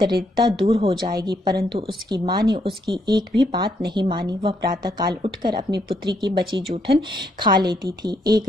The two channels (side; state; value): both; normal; correlation 0.74